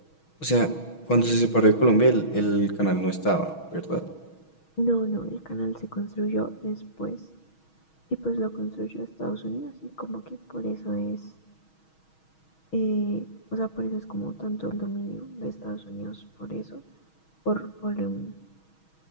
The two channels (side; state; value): right; late; 6.3 ms